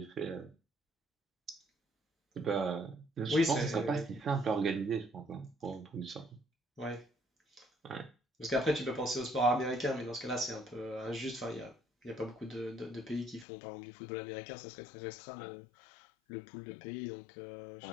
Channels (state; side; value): drops out; right; at 13.5 s